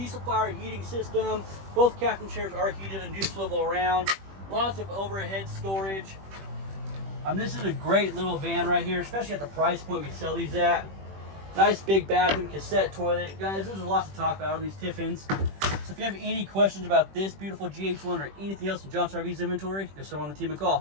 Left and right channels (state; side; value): late; left; 21 ms